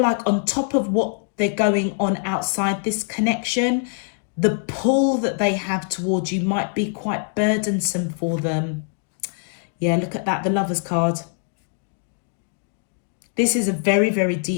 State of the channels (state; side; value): silent; right; 63 dB below the other